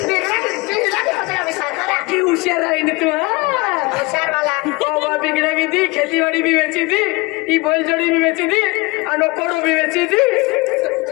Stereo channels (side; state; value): right; quieter; 24.6 dB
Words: की होशियार है तू होशियार वाला ओ बिगड़ा भी थी खेती बाड़ी भी बेची थी ई बोल जोड़ी भी बेची थी और कोड़ो भी बेची थी